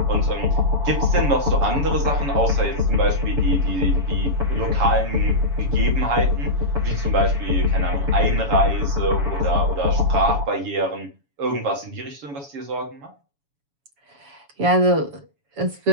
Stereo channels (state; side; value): late; left; 7.1 ms